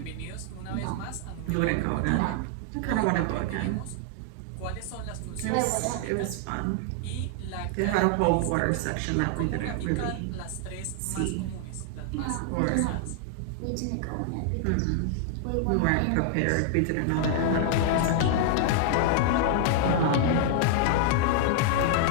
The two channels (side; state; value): both; different; correlation 0.00